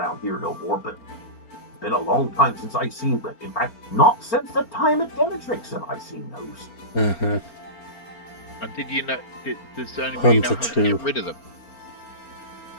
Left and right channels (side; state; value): right; late; 4.4 ms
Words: here no more. But it's been a long time since I've seen them. In fact, not since the time at Demetrix have I seen those. Uh-huh. And did you know? Does anybody know how to Hunter get rid of them?